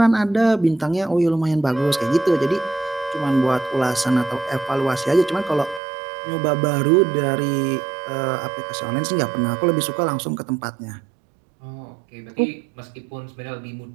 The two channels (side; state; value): left; drops out; at 5.8 s